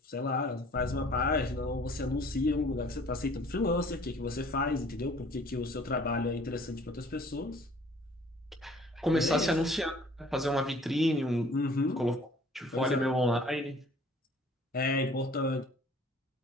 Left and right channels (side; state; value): both; normal; correlation 0.53